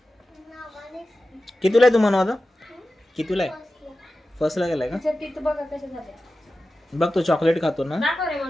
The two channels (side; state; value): both; normal; correlation 0.94